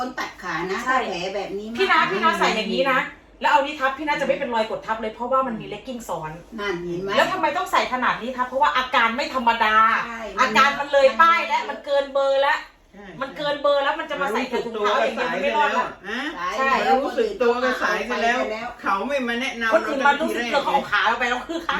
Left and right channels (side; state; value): both; identical; correlation 1.00